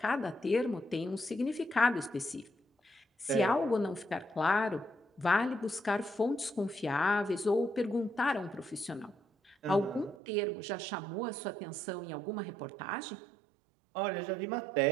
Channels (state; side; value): drops out; left; at 10.2 s